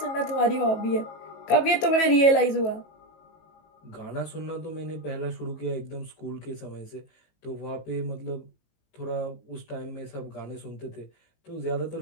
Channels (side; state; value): right; late; 18 ms